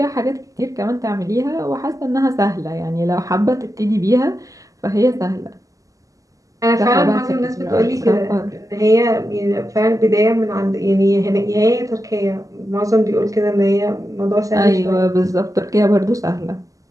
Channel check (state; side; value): late; left; 0.16 ms